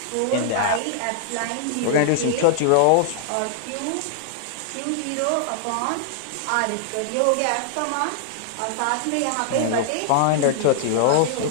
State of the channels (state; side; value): different; both; correlation -0.01